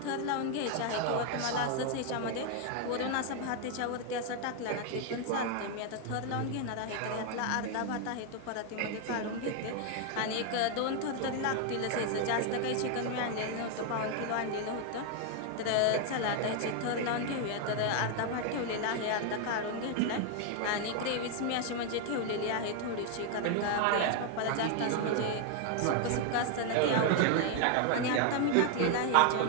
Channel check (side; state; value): both; different; correlation 0.00